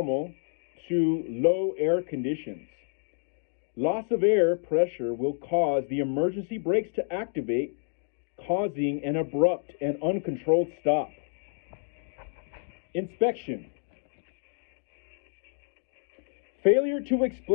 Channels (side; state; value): right; silent; digital silence